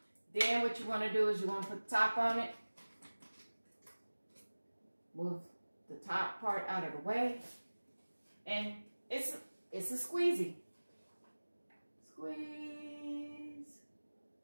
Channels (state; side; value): inverted; both; correlation -1.00